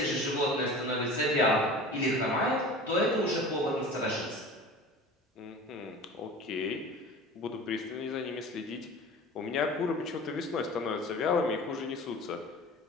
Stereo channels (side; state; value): both; normal; correlation 0.38